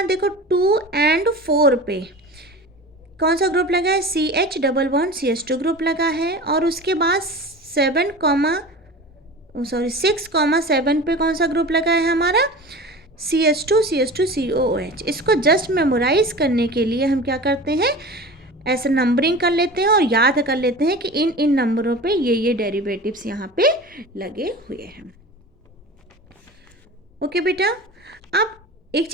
देखो 2 और 4 पे कौन सा ग्रुप लगा है, CH double bond CH2 group लगा है, और उसके बाद 6 7 पे कौन सा ग्रुप लगा है हमारा, CH2 COOH। इसको जस्ट मेमोराइज करने के लिए हम क्या करते हैं, ऐसे नंबरिंग कर लेते हैं और याद कर लेते हैं कि इन इन नंबरों पे ये डेरिवेटिव्स यहाँ पे लगे हुए हैं। ओके बेटा, अब एक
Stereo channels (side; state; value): both; normal; correlation 0.35